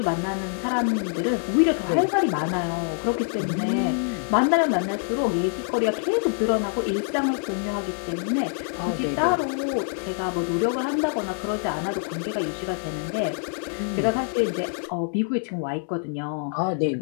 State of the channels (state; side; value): silent; right; digital silence